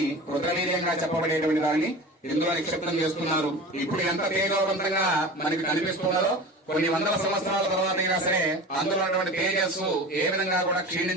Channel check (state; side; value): normal; both; correlation 0.34